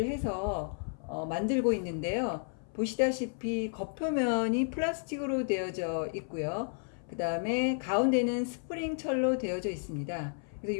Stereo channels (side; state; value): right; silent; 55 dB below the other